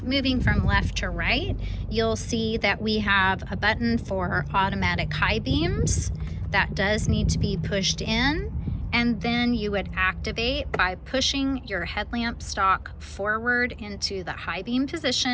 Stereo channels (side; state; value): both; identical; correlation 1.00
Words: moving from left to right, you'll see that we have a button for automatic high beams. That does need to be pushed in, and then you would activate by pushing your headlamp stalk forward into the high beam